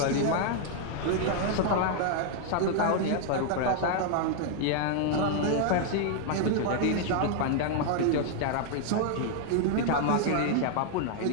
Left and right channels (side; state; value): both; different; correlation 0.00